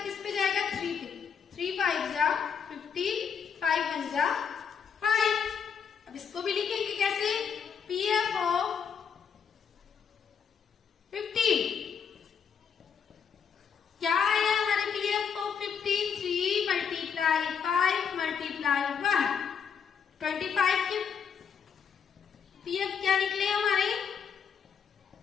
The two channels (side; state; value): right; quieter; 7.0 dB